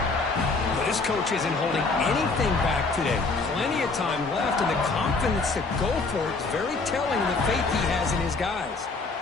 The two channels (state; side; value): quieter; right; 3.9 dB